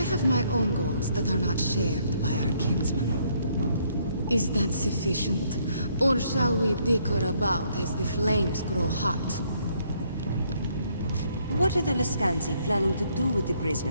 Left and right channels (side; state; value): both; inverted; correlation -0.69